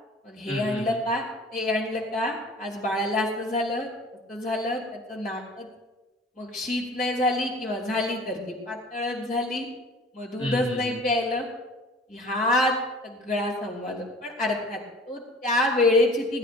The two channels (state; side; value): normal; both; correlation 0.46